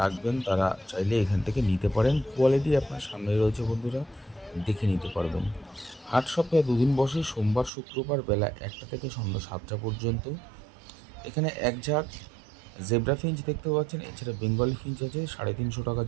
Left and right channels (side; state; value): left; drops out; at 7.7 s